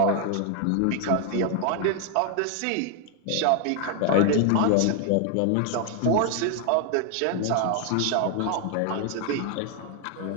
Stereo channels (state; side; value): different; both; correlation 0.00